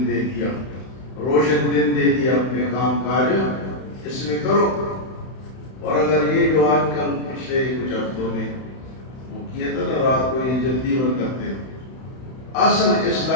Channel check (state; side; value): late; right; 31 ms